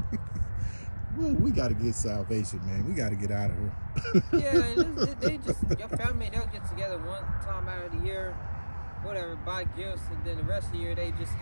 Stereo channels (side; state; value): both; inverted; correlation -1.00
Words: Well, we got to get salvation, man. We got to get out of here. Yeah, your family, they'll get together one time out of the year, whatever, buy gifts, and then the rest of the year they just